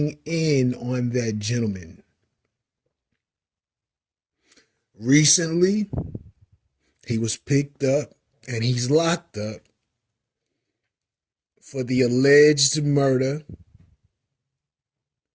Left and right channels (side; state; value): both; identical; correlation 1.00